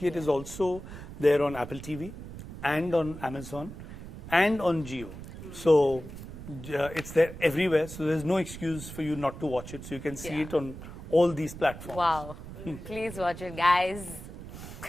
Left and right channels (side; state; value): right; noise; rumble, 12 dB below the sound